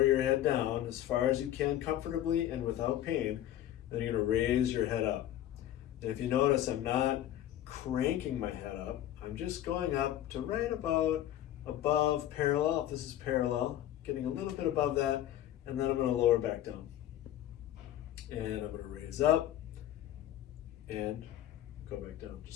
your head down as far as you can comfortably and without pain. Then you're going to raise your head up. And if you notice, I'm not cranking my head up. I'm just going up to right about above parallel, if this is parallel, getting a little bit above that, and then I'm going to lower back down. And I'm going to raise up and go back down,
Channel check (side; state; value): right; quieter; 12.4 dB